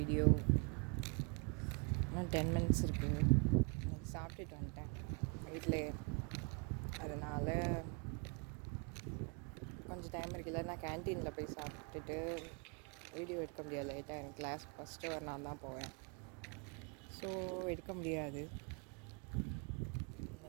இன்னும் 10 மினிட்ஸ் இருக்குது. இன்னைக்கு சாப்பிட்டுட்டு வந்துட்டேன் வீட்டில். அதனால் கொஞ்சம் டைம் இருக்குல்ல, நான் கேன்டீனில் போய் சாப்பிட்டுட்டு வீடியோ எடுக்க முடியாது. லேட்டாக எனக்கு கிளாஸ் ஃபஸ்ட்டு ஒரு நான் தான் போவேன், ஸோ எடுக்க முடியாது.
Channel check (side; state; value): left; quieter; 35.1 dB